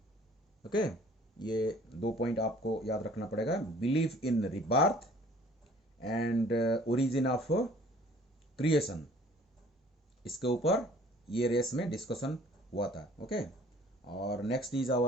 Okay, ये 2 point आपको याद रखना पड़ेगा, belief in rebirth and origin of creation. इसके ऊपर ये race में discussion हुआ था. ओके, और next is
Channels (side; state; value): both; normal; correlation 0.54